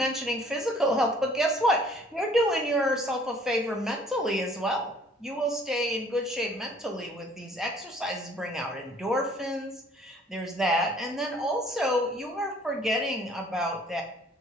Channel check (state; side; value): normal; both; correlation 0.56